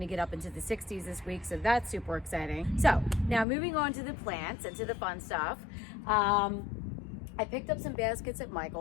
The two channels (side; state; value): right; drops out; at 3.5 s